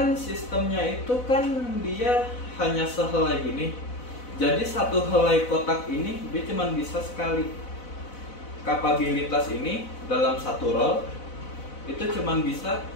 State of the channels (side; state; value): right; late; 4.0 ms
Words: sistemnya itu kan dia hanya sehelai gini. Jadi satu helai kotak ini dia cuma bisa sekali. Kapabilitas ini dalam satu roll itu cuma bisa